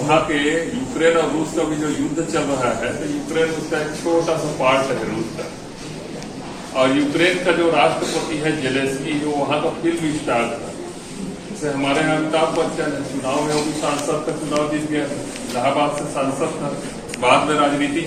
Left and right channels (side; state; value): both; identical; correlation 1.00